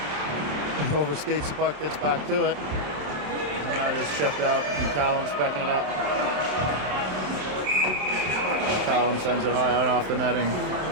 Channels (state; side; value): late; left; 27 ms